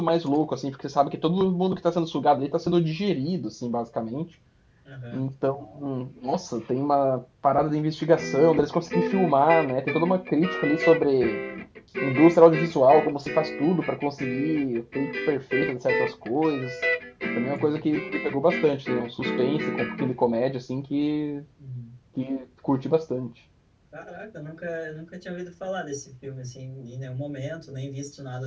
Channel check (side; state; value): both; identical; correlation 1.00